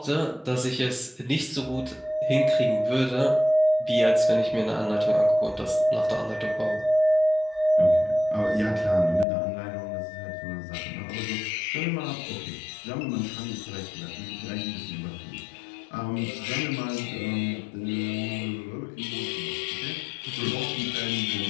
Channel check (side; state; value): right; drops out; at 9.2 s